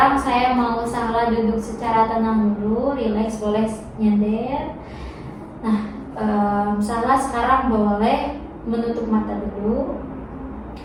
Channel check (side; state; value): both; identical; correlation 1.00